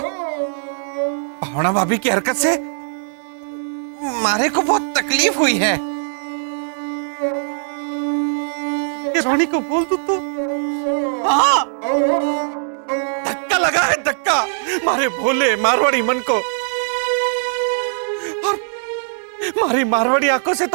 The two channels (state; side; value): silent; left; digital silence